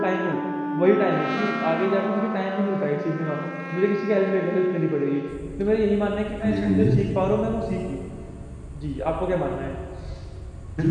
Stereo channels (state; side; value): identical; both; correlation 1.00